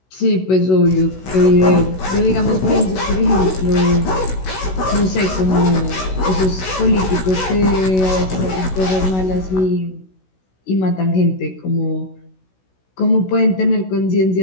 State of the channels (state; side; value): late; right; 16 ms